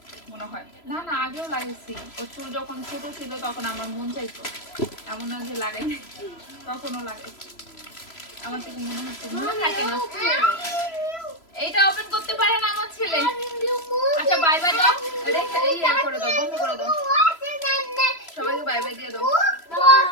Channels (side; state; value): right; late; 3.0 ms